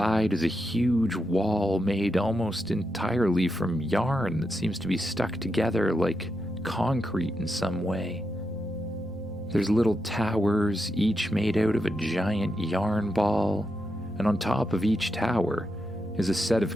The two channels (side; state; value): right; noise; rumble, 27 dB below the sound